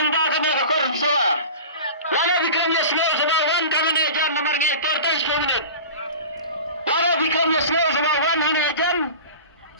kami korang semua. Lalu bikinnya sebagai kami jam nomornya 14 minit. Lalu bikinnya sebagai jam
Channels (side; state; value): both; inverted; correlation -0.35